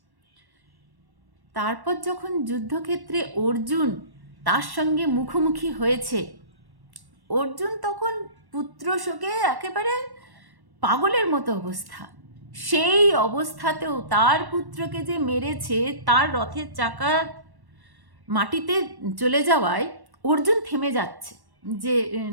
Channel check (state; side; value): late; left; 1.1 ms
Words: তারপর যখন যুদ্ধক্ষেত্রে অর্জুন তার সঙ্গে মুখোমুখি হয়েছে, অর্জুন তখন পুত্র শোকে একেবারে পাগলের মতো অবস্থা। সেই অবস্থাতেও তার পুত্রকে যে মেরেছে, তার রথের চাকা মাটিতে চলে যাওয়ায় অর্জুন থেমে যাচ্ছে যে